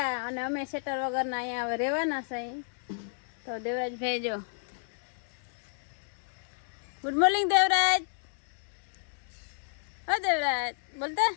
અને અમે સેટર વગરના અહીંયા હવે રહેવાના છે। તો દેવરાજભાઈ જો, ગુડ મોર્નિંગ દેવરાજ। ઓ દેવરાજ બોલતા,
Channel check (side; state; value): right; silent; 57 dB below the other